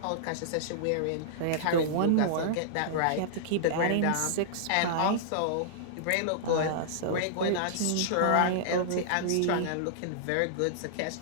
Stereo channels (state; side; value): different; both; correlation -0.02